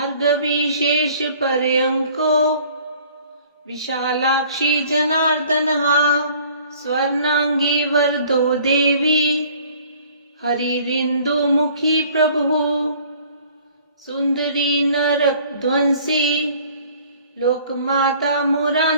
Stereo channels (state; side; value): inverted; both; correlation -0.53